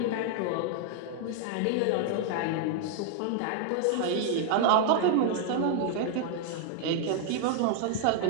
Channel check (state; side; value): different; both; correlation 0.00